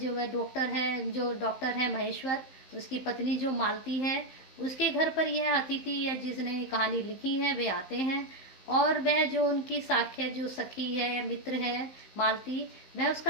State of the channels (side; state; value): right; late; 15 ms